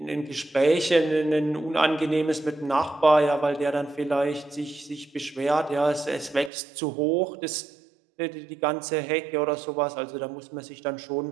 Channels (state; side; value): drops out; left; at 6.5 s